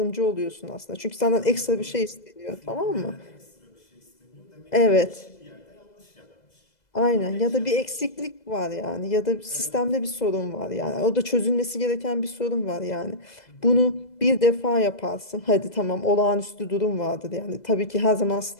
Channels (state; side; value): late; right; 2.0 ms